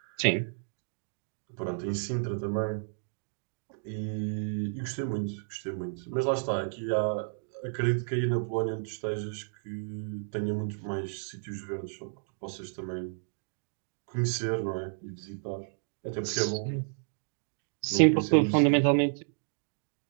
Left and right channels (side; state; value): left; silent; digital silence